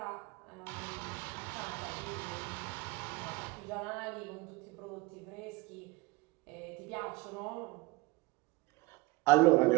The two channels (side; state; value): left; quieter; 23.1 dB